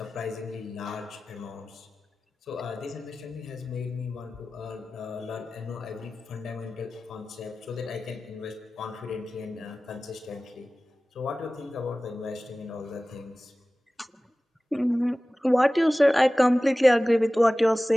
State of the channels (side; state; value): both; normal; correlation 0.97